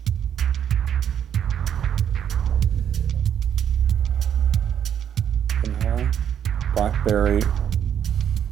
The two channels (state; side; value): quieter; left; 9.1 dB